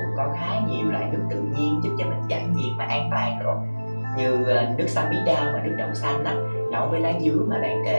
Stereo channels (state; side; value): inverted; both; correlation -1.00